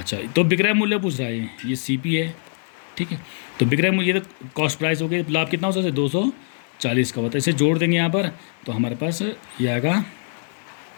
तो विक्रय मूल्य पूछ रहा है ये CP है, ठीक है। तो विक्रय मूल्य ये तो कॉस्ट प्राइस हो गई, लाभ कितना हो सकता है 240 का होता है, इसे जोड़ देंगे यहाँ पर तो हमारे पास ये आएगा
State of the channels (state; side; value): silent; right; 63 dB below the other